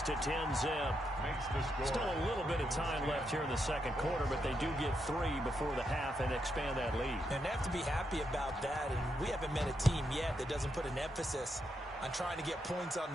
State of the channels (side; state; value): both; normal; correlation 0.81